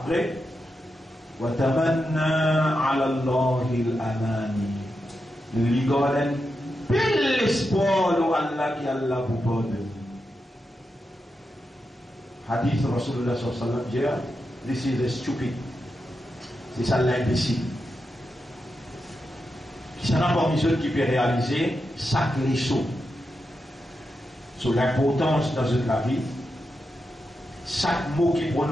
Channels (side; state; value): both; normal; correlation 0.87